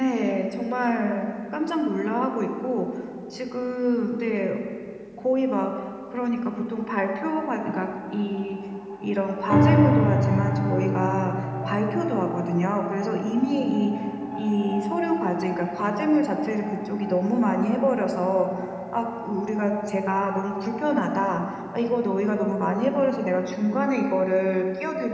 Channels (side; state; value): both; identical; correlation 1.00